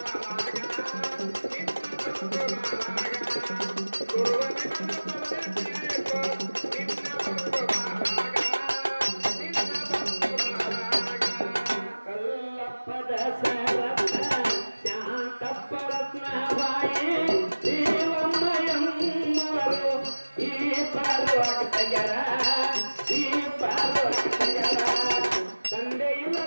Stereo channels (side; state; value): both; inverted; correlation -1.00